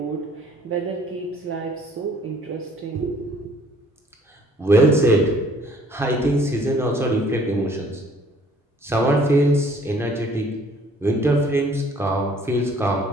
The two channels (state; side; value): normal; both; correlation 0.58